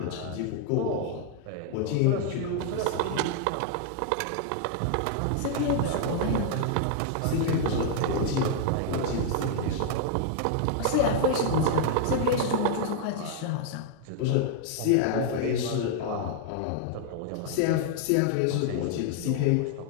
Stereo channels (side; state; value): both; different; correlation 0.00